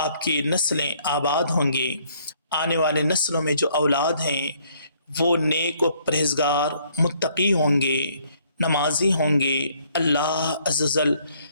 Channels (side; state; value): both; inverted; correlation -0.64